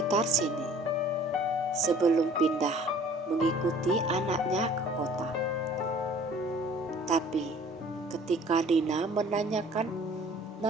sini sebelum pindah mengikuti anaknya ke kota. Tapi ketika Dina menanyakan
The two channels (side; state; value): both; normal; correlation 0.52